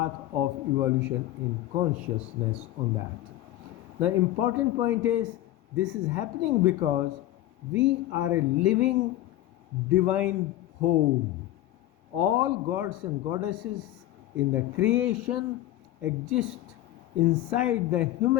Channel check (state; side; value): quieter; right; 14.7 dB